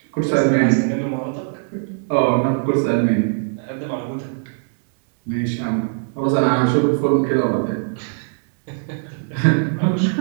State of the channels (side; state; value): left; silent; digital silence